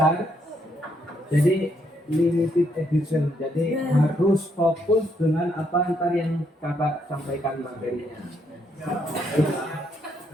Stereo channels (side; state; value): both; normal; correlation 0.74